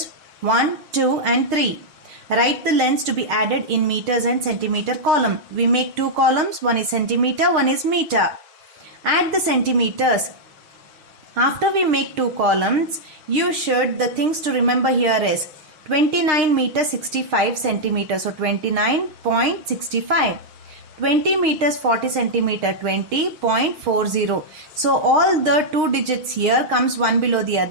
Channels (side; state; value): left; late; 6.5 ms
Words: 1, 2 and 3. Write the lengths to be added in meters and centimeter column. We make 2 columns, one is centimeter, one is meter. Add the centimeters. After we make 2 columns, the things to remember here is 29 meter 65 centimeters, so 29.65. 20 meters 40 centimeter, 20.40. So all the 2 digits here comes one below the